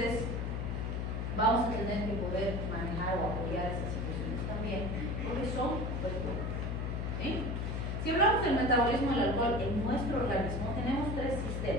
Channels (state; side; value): noise; left; hum, 1 dB below the sound